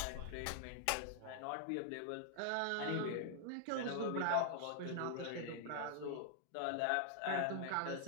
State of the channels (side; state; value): both; different; correlation 0.00